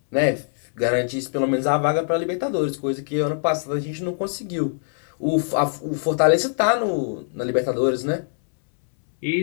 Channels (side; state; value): right; silent; 64 dB below the other